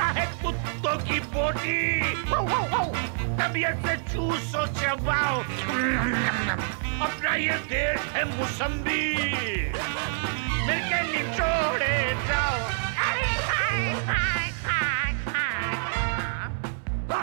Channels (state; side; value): silent; left; 60 dB below the other